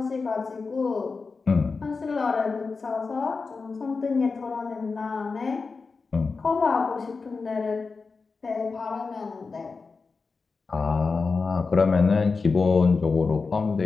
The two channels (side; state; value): right; quieter; 4.5 dB